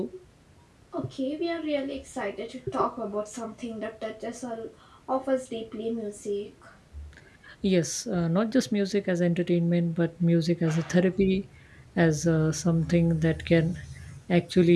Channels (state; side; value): identical; both; correlation 1.00